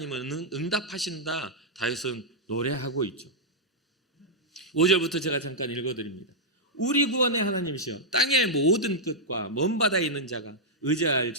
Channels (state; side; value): normal; both; correlation -0.06